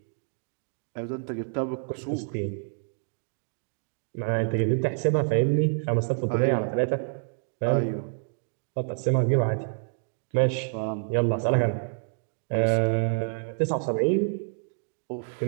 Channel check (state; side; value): silent; left; digital silence